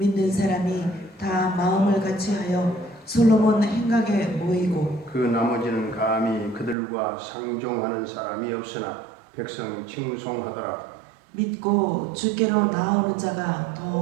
사람이 다 마음을 같이하여 솔로몬 행각에 모이고 그 나머지는 감히 그들과 상종하는 사람이 없으나 백성이 칭송하더라. 믿고 주께로 나오는 자가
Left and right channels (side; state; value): left; drops out; at 6.8 s